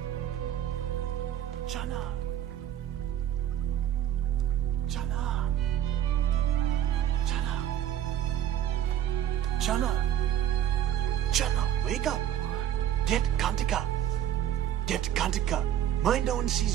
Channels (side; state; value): left; quieter; 10.9 dB